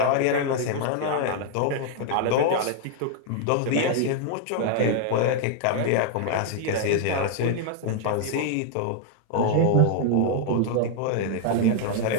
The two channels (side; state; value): both; different; correlation 0.00